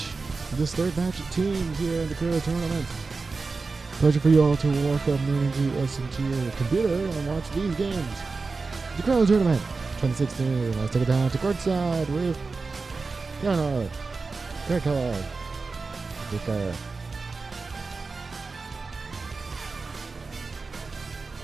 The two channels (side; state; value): left; quieter; 4.1 dB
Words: of teams here in the LeCrow tournament. Pleasure for you all to walk up into your computer and watch these games. The LeCrow tournament 2016. Let's take it down to courtside with Leonard, Kellogg, Vicker.